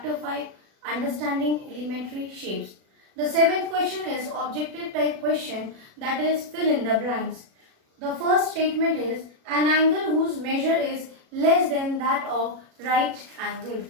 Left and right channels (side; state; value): left; late; 37 ms